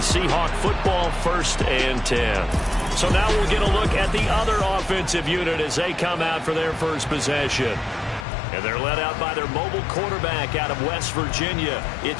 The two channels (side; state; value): right; drops out; at 8.2 s